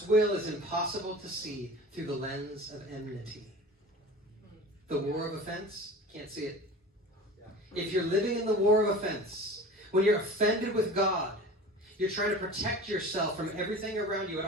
will is impossible to see through the lens of enmity. The war of offense, can't see it. If you're living in the war of offense, when you're offended with God, you're trying to protect yourself from everything around you at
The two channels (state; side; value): normal; both; correlation 0.38